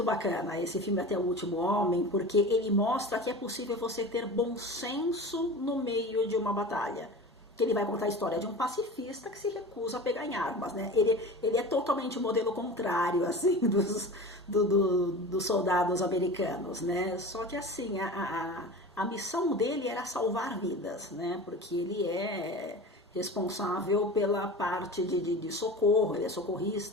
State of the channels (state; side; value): normal; both; correlation 0.33